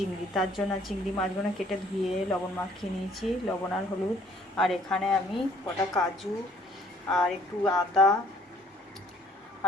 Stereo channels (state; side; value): normal; both; correlation 0.60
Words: তার জন্য চিংড়ি মাছগুলো কেটে ধুয়ে লবণ মাখিয়ে নিয়েছি, লবণ আর হলুদ। আর এখানে আমি কটা কাজু আর একটু আদা